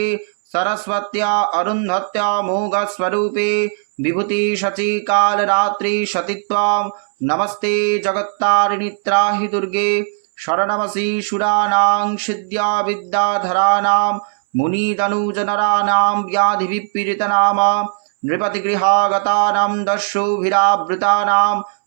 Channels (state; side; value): silent; left; 67 dB below the other